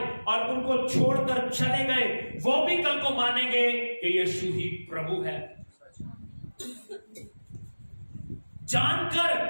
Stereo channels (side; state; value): both; inverted; correlation -1.00